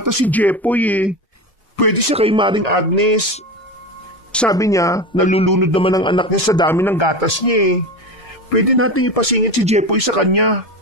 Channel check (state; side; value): normal; both; correlation 0.24